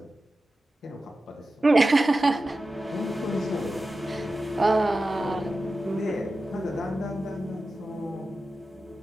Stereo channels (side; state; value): both; normal; correlation 0.93